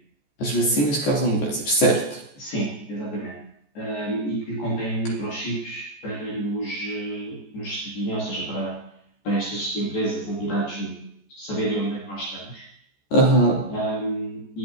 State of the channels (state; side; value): late; right; 14 ms